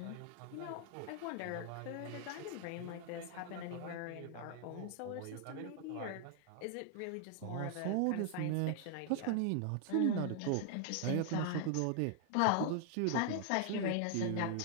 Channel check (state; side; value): different; both; correlation 0.00